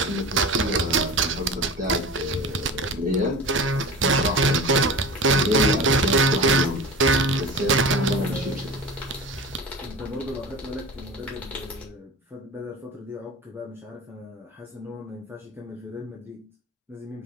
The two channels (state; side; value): normal; both; correlation 0.34